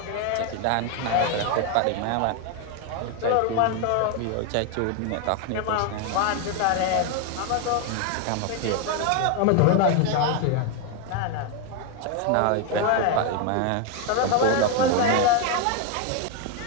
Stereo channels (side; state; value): both; different; correlation 0.01